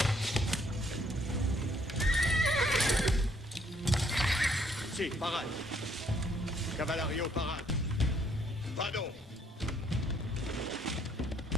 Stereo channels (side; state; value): both; normal; correlation 0.67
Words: Sì, parade. Cavalario, parade. Vado!